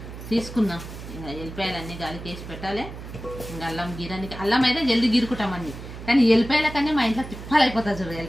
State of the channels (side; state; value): right; noise; hum, 12 dB below the sound